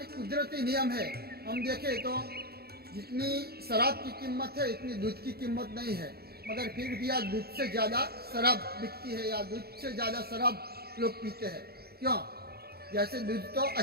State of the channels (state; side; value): late; left; 0.46 ms